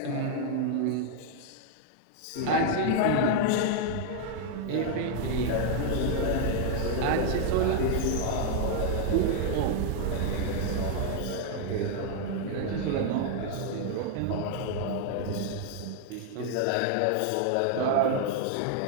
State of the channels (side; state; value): both; different; correlation 0.00